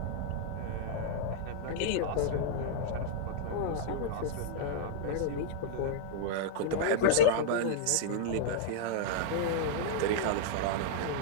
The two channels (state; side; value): different; both; correlation -0.02